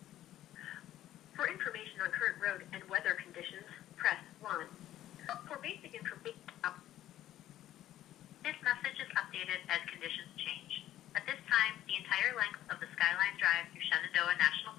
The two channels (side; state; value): right; quieter; 13.1 dB